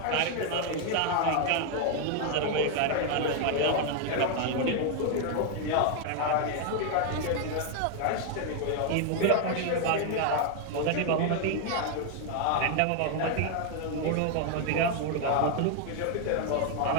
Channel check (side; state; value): both; different; correlation 0.00